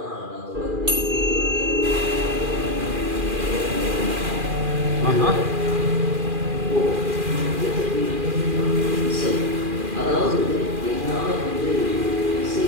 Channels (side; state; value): left; late; 2.4 ms